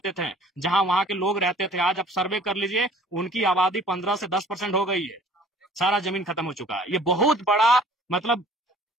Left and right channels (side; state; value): both; normal; correlation 0.52